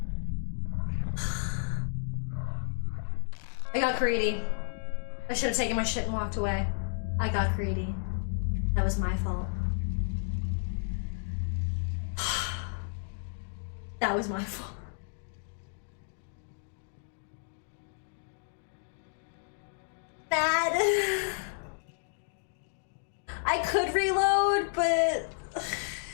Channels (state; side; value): silent; right; digital silence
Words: I got greedy. I should have taken my shit and walked away. I got greedy. That was my fault. That was my fault. Bad. I could reload, but